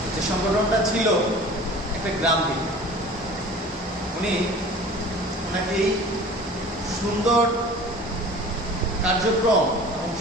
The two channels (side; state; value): both; normal; correlation 0.42